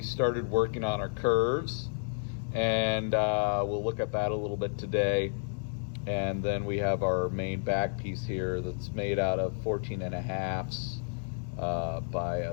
started working on our curves, and we'll look at that a little bit today. And then we have our main back piece here that's made out of 14.5s by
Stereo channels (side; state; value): right; silent; digital silence